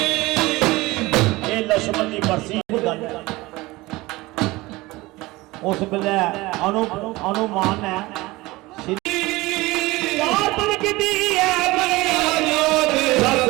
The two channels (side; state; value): left; quieter; 20.6 dB